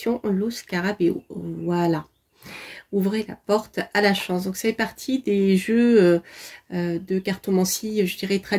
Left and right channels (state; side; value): identical; both; correlation 1.00